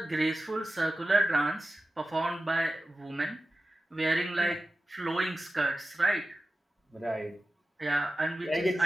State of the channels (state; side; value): normal; both; correlation 0.94